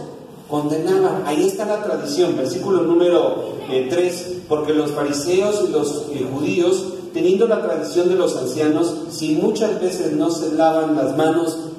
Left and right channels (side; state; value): both; identical; correlation 1.00